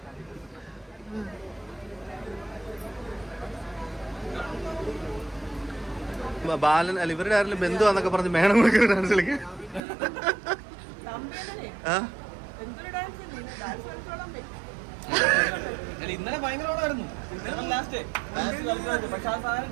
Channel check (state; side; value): drops out; left; at 9.8 s